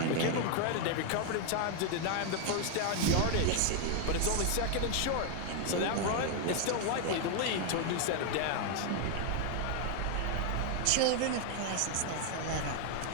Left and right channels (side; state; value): both; different; correlation 0.00